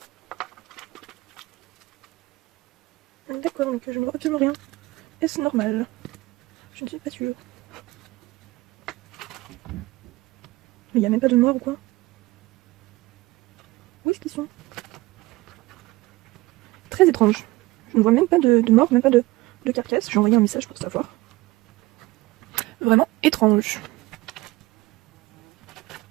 D'accord, donc je ne vois absolument rien. Est-ce normal? Je ne suis pas sûre. Mais il n'y a même pas de mort ou quoi? Où est-ce qu'ils sont? Très étrange. Je ne vois même pas de mort, même pas de carcasse. J'ai envoyé un message pour savoir. Vraiment étrange.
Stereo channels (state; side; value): quieter; left; 19.9 dB